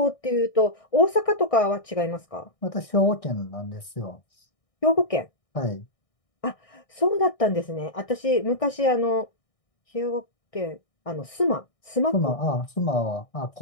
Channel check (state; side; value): late; right; 1.6 ms